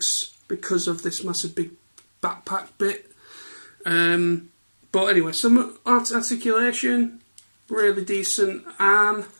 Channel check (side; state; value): both; inverted; correlation -1.00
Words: because of this massive big backpack bit. But anyway, some articulation, really decent. Arm,